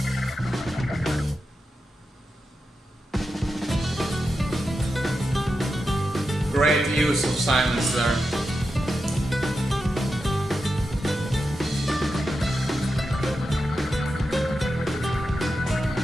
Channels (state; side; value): normal; both; correlation 0.89